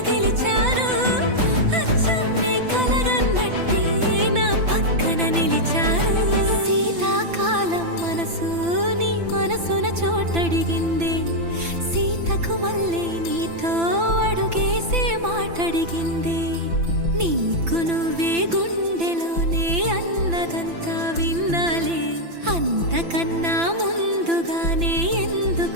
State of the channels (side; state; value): left; late; 5.9 ms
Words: గెలిచారు అచ్చం నీ కలగన్నట్టే నా పక్కన నిలిచారు శీతాకాలం మనసు నీ మనసున చోటడిగింది సీతకు మళ్ళీ నీతో అడుగేసే మాటడిగింది నీకు నువ్వే గుండెలోనే అన్నదంతా విన్నాలే అంతకన్నా ముందుగానే